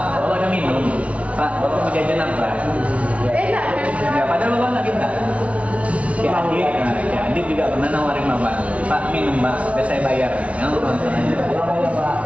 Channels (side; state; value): left; late; 0.064 ms